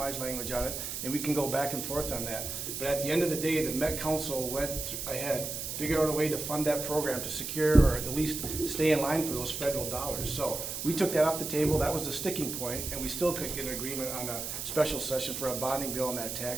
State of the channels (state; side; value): noise; right; hiss, 5 dB below the sound